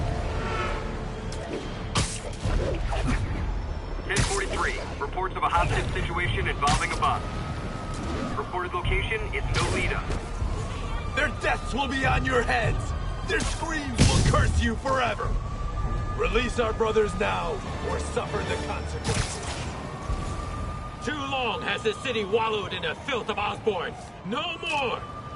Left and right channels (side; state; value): both; identical; correlation 1.00